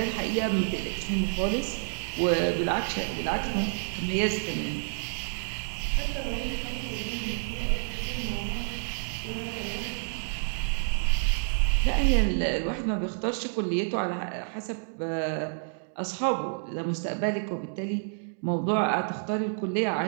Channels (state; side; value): silent; left; digital silence